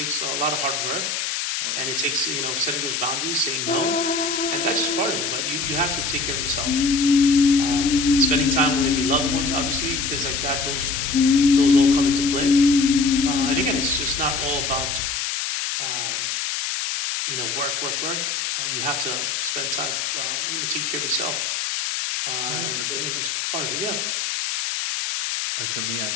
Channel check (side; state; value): left; noise; hiss, 1 dB below the sound